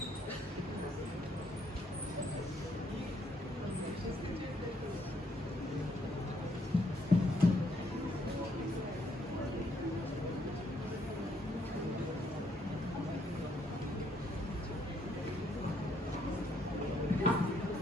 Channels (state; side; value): normal; both; correlation 0.71